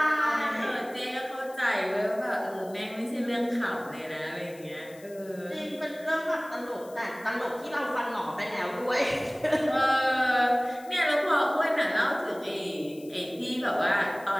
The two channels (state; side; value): noise; left; hiss, 23 dB below the sound